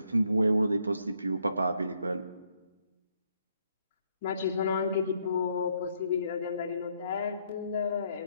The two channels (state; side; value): inverted; both; correlation -0.73